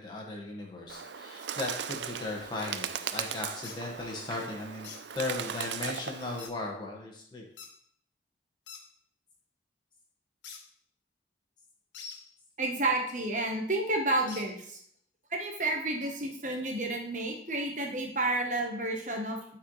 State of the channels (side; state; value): both; normal; correlation 0.03